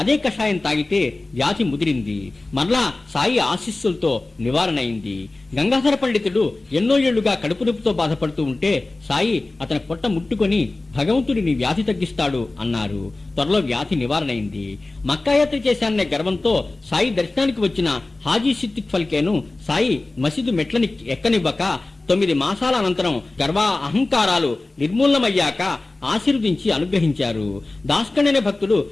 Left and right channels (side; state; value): right; quieter; 3.1 dB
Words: కషాయం తాగితే వ్యాధి ముదిరింది. మరలా సాయి ఆశీస్సులతో నివారణ అయింది. గంగాధర పండితుడు ఎన్నో ఏళ్లుగా కడుపు నొప్పితో బాధపడుతూ ఉంటే సాయి అతని పొట్ట ముట్టుకొని, భగవంతుడి నీ వ్యాధి తగ్గిస్తాడు అన్నారు. త్వరలో వ్యాధి నివారణ అయింది. మక్కాయాత్ర చేశాననే గర్వంతో సాయి దర్శనానికి వచ్చిన హాజీ సిద్దిక్ ఫల్కేను సాయి మసీదు మెట్లని ఎక్కనివ్వక 9 మాసాల అనంతరం గర్వా అహంకారాలు నిర్మూలనమయ్యాక ఆశీర్వదించి అనుగ్రహించారు. దాస్కణ్ అనే భక్తుడు